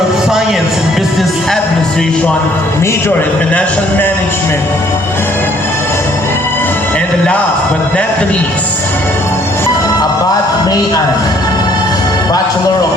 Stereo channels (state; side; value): normal; both; correlation 0.62